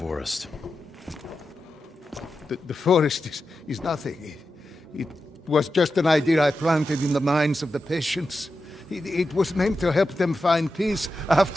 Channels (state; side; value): normal; both; correlation 0.90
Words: The forest is nothing. It was just an idea I planted in the minds of the patients. It was meant to help them find peace